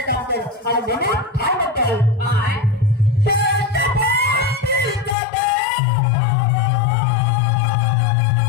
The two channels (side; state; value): right; drops out; at 5.2 s